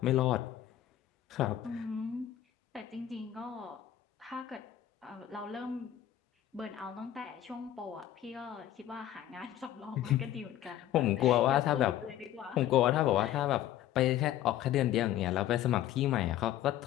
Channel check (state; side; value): quieter; right; 12.0 dB